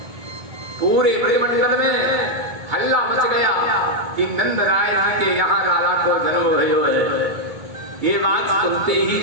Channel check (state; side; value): late; left; 2.2 ms